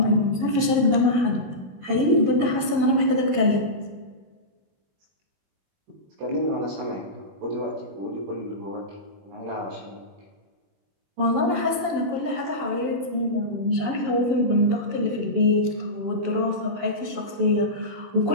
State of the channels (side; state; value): left; late; 20 ms